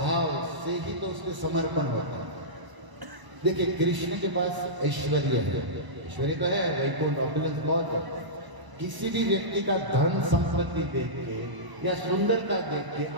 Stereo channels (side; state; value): left; late; 1.0 ms